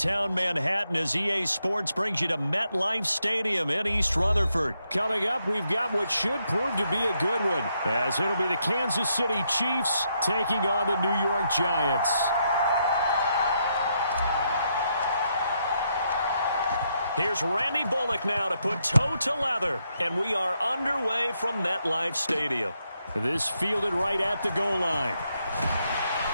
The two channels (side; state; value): both; inverted; correlation -0.78